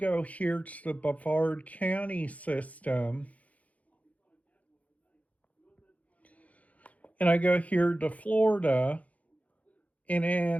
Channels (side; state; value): right; late; 0.069 ms